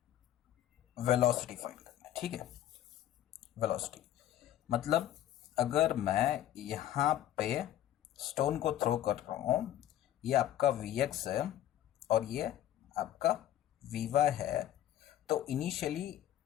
velocity find करना है, ठीक है। वेलोसिटी मतलब अगर मैं यहाँ पे स्टोन को थ्रो कर रहा हूँ, ये आपका Vx है और ये आपका Vy है, तो इनिशियली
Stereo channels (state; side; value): quieter; right; 12.2 dB